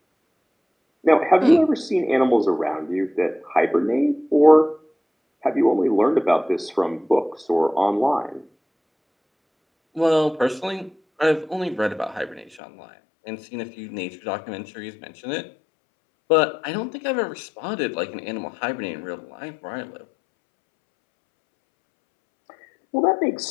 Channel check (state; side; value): drops out; right; at 12.6 s